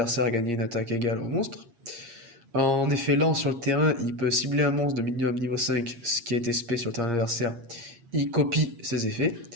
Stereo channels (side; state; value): left; late; 8.5 ms